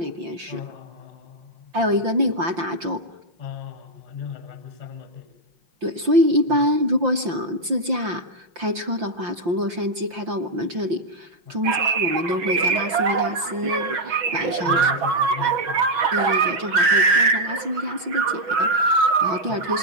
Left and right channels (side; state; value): left; late; 5.8 ms